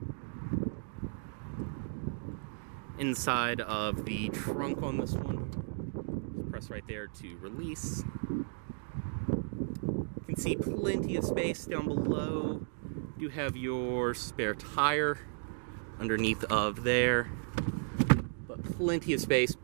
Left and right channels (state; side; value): silent; left; digital silence